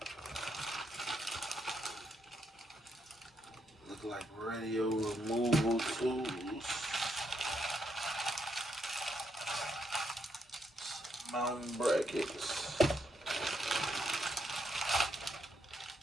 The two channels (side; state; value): both; normal; correlation 0.77